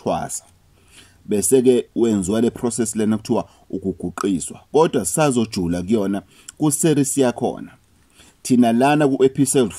Bese ke wenziwa le process lena kuthiwa ukuguqiswa. Kodwa sazojula kuyona ku series yakhona. Thina lana ku episode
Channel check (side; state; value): both; identical; correlation 1.00